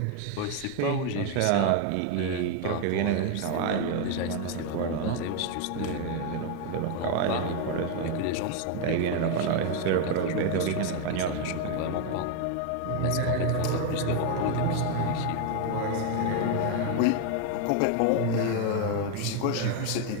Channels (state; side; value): different; both; correlation 0.01